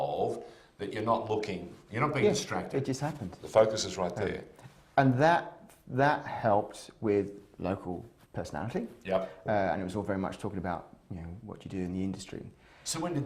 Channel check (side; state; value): both; identical; correlation 1.00